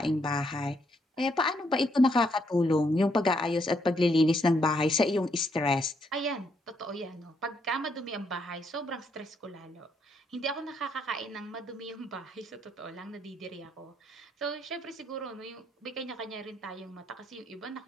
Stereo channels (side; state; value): both; normal; correlation 0.73